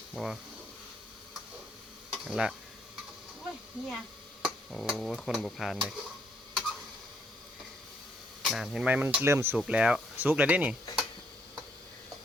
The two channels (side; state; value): both; normal; correlation 0.71